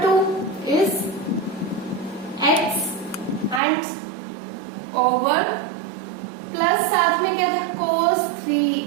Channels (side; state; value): left; drops out; at 3.6 s